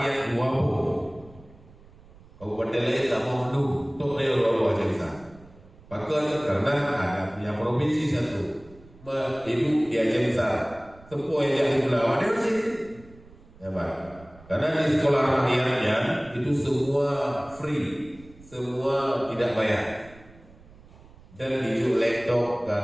20 kabupaten lain tak mau dulu untuk dia 20 Aceh Besar. Bahkan karena ada punya provinsi satu hidup di Aceh Besar. Sepuh yang di Pulau ada sih. Ya Pak. Karena di sekolah rakyatnya itu semua free, semua tidak bayar. Dan dijuk laptop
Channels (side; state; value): right; noise; rumble, 23 dB below the sound